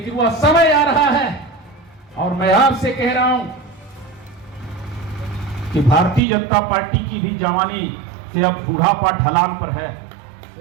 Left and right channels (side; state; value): left; drops out; at 6.2 s